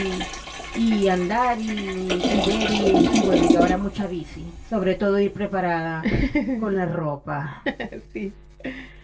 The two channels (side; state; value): both; identical; correlation 1.00